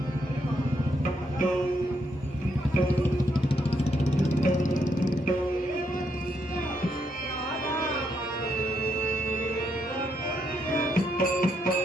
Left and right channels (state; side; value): normal; both; correlation 0.77